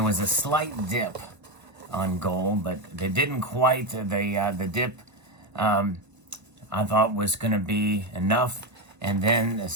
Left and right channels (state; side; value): late; left; 1.0 ms